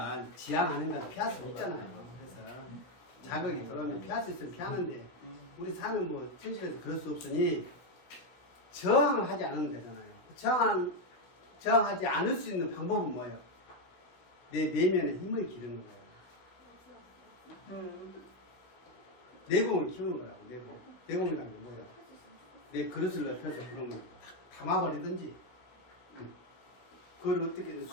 지향하는 건 피할 수 없잖아요. 그래서 자극이 들어오면 피할 수 있으면 피하는데 우리 사는 뭐 현실에서 그럴 수 없으니 저항을 하지 않으면 되잖아요. 저항하지 않을 수 있는 방법은 뭐예요? 내 내면의 힘을 기르는 거예요. 내공을 키우는 거라고. 내공이라는 게 뭐예요? 내 그릇을 넓혀서 그러면 담아버리든지 그걸 어떻게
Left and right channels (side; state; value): right; late; 16 ms